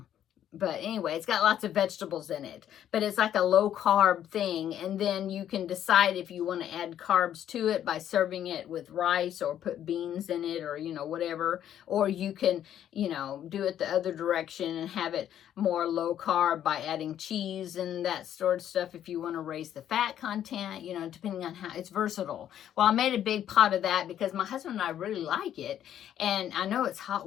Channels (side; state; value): right; quieter; 10.6 dB